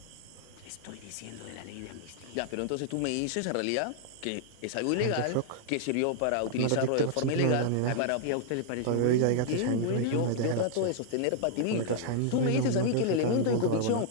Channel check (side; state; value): both; different; correlation -0.01